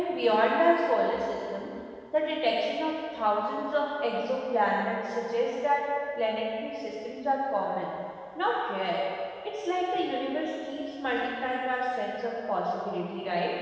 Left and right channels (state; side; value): identical; both; correlation 1.00